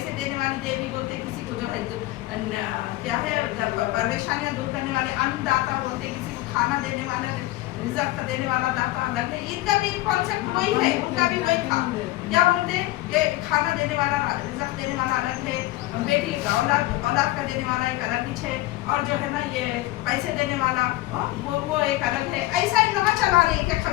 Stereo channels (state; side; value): quieter; right; 17.6 dB